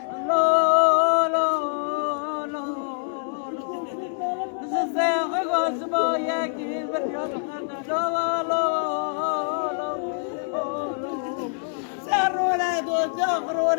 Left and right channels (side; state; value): right; silent; digital silence